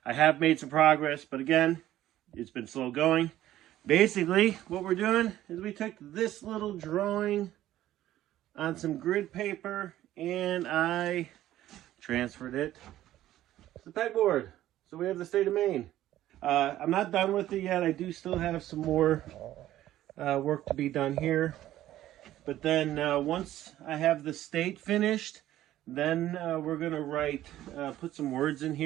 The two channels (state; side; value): quieter; left; 13.7 dB